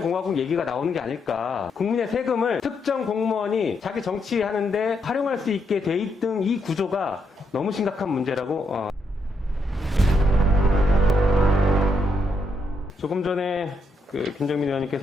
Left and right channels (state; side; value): normal; both; correlation 0.79